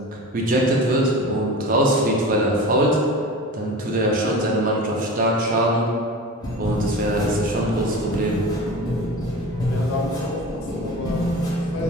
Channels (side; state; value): both; normal; correlation 0.34